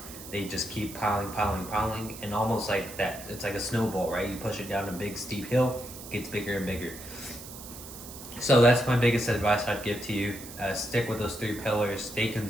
they just keep piling, and almost like that. It's like a snowball, right? You push it down a big steep hill, it gets bigger and bigger. So that's my biggest advice I'd give to you. Stick with those 3 pillars, stay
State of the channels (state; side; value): noise; right; hiss, 14 dB below the sound